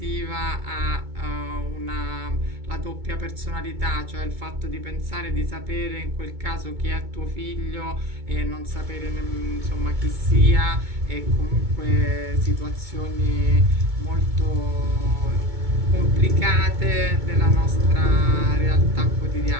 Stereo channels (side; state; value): left; late; 2.2 ms